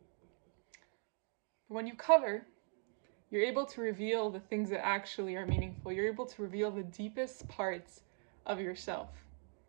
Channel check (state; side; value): silent; left; 51 dB below the other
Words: But when you cover, you're able to reveal the things that actually are meaningful. You're able to reveal the deepest parts of yourself.